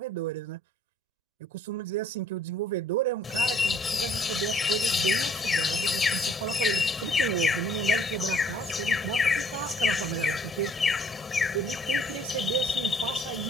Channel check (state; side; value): normal; both; correlation 0.60